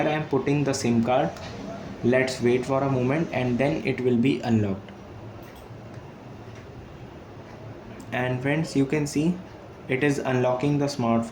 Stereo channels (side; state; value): both; identical; correlation 1.00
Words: I am putting the SIM card. Let's wait for a moment and then it will be unlocked. And friends, you can see it is unlocking the